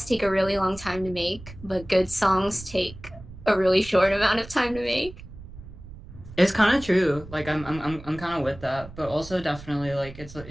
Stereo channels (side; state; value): right; noise; rumble, 16 dB below the sound